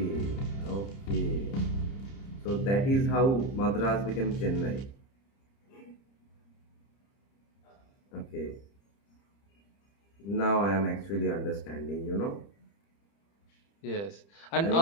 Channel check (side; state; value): right; late; 30 ms